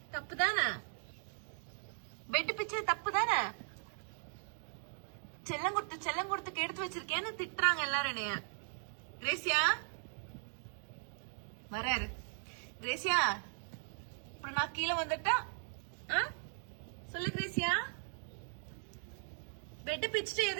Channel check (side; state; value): left; silent; digital silence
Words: தப்பு தானே? பெட் பிச்சது தப்பு தானே? செல்லம் கொடுத்து எடுத்து வச்சிருக்கேன்னு திட்டுறாங்க எல்லாரும் என்னைய. கிரேசியா வராரு. கிரேசியா அப்புறம் நான் கீழே வந்துட்டா சொல்லு கிரேசியா. பெட் பிச்சுட்டு